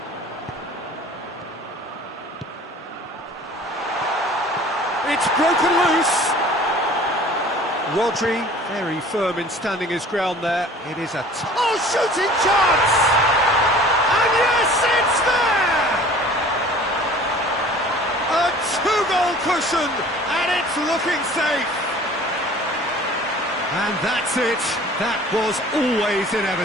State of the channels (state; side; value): normal; both; correlation 0.47